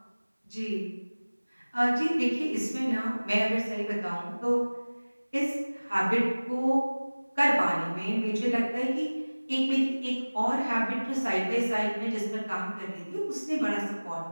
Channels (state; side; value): inverted; both; correlation -1.00